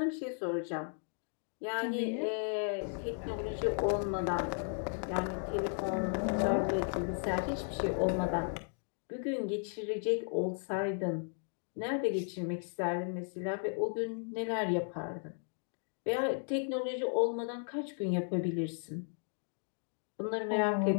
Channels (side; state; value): right; silent; 54 dB below the other